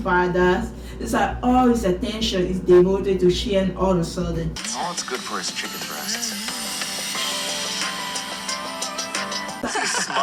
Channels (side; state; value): both; identical; correlation 1.00